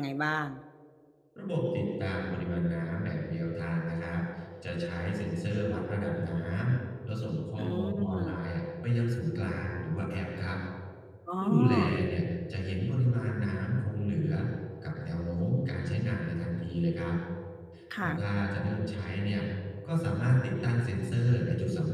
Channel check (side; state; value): both; identical; correlation 1.00